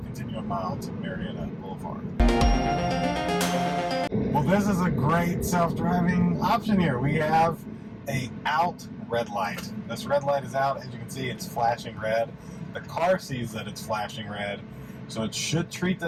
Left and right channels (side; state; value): both; identical; correlation 1.00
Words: continue a mile to Marietta Boulevard. Well, this is a great self-driving option here. We have a out red light. This red light is out. As you can see, it's flashing red. The car sees that it's flashing red. So it should treat